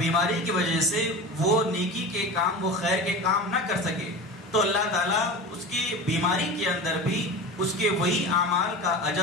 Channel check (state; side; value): normal; both; correlation 0.30